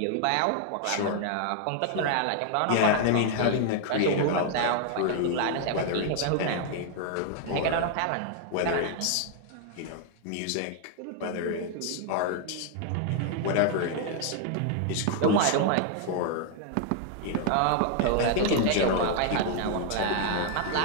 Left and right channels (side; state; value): both; different; correlation 0.00